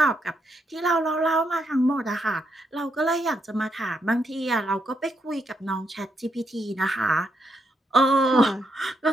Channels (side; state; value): both; normal; correlation 0.79